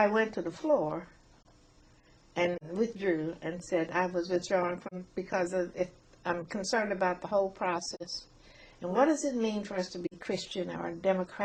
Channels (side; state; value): both; identical; correlation 1.00